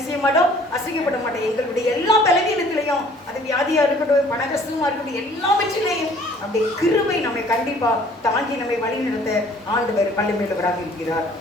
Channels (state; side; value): normal; both; correlation 0.55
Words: செய்ய மாட்டோம், அசைக்கப்பட மாட்டோம். எங்களுடைய எல்லா பலவீனத்திலையும், அது வியாதியா இருக்கட்டும், பண கஷ்டமா இருக்கட்டும், எல்லாவற்றிலையும் அப்படி கிருபை நம்மை கண்டிப்பா தாங்கி நம்மை வழி நடத்த ஆண்டவர் வல்லமையுள்ளவராக இருக்கிறார்.